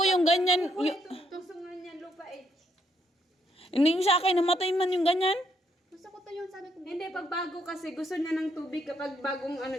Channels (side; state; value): both; normal; correlation 0.74